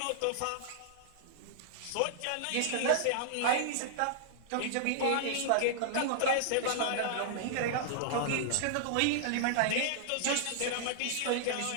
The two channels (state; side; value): different; both; correlation -0.01